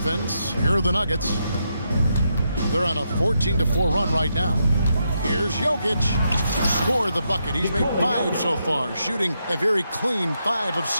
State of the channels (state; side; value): inverted; both; correlation -0.81